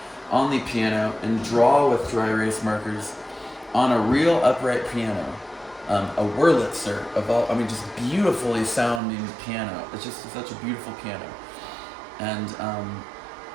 on the piano and draw with dry erase markers on a real upright piano, a Wurlitzer just beautifully sounding piano. It's just such a beautiful piano,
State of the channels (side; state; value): left; drops out; at 9.0 s